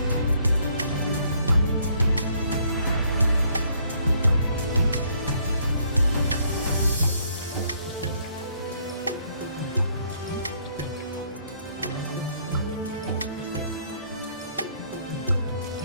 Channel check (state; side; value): inverted; both; correlation -0.67